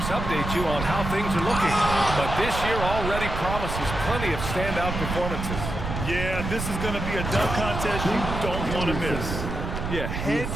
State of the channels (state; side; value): noise; right; rumble, 5 dB below the sound